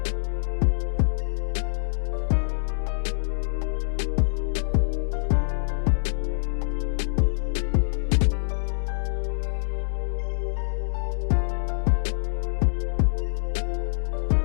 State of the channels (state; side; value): silent; right; 61 dB below the other